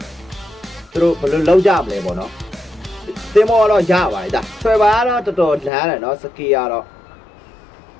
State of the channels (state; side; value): drops out; right; at 5.7 s